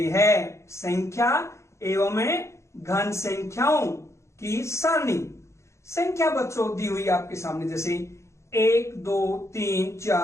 है संख्या एवं घन संख्याओं की सारणी। संख्या बच्चों दी हुई आपके सामने, जैसे 1 2 3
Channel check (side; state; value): right; late; 0.14 ms